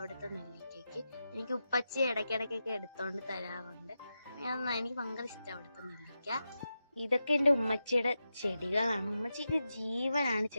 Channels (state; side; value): inverted; both; correlation -0.89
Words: നെല്ലിക്കയ്ക്ക്. എനിക്ക് ഉപ്പച്ചി ഇടയ്ക്കിടയ്ക്കൊക്കെ എടുത്തുകൊണ്ട് തരാറുണ്ട്. എനിക്ക് ഭയങ്കര ഇഷ്ടമാണ് അവിടുത്തെ നെല്ലിക്ക. ഇതൊക്കെ എൻ്റെ ഉമ്മച്ചിയുടെ ചെടികളാണ്. ഉമ്മച്ചിക്ക് ജീവനാണ്